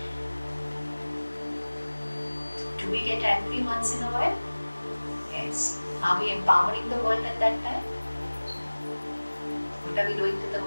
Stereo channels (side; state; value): both; inverted; correlation -1.00